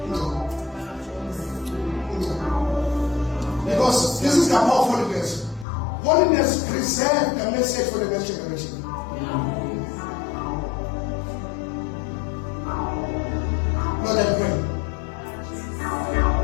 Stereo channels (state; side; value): drops out; right; at 5.7 s